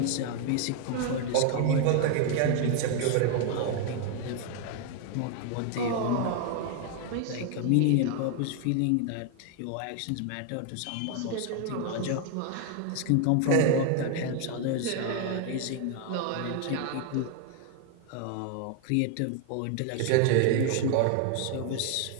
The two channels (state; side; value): different; both; correlation 0.01